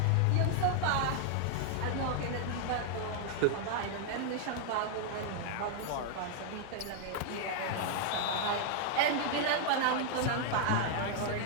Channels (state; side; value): different; both; correlation 0.00